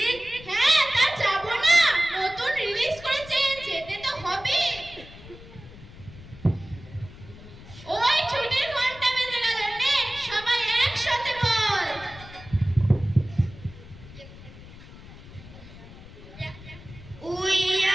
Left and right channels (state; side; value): noise; left; rumble, 18 dB below the sound